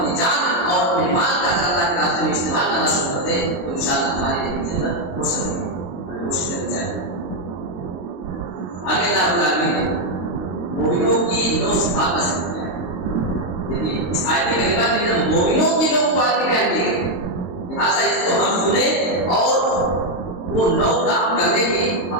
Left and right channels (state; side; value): late; right; 22 ms